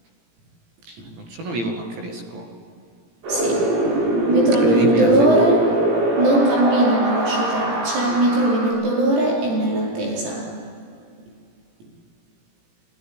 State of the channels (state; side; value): late; left; 17 ms